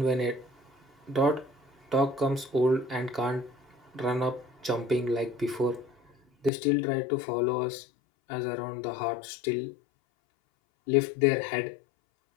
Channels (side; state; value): right; drops out; at 6.5 s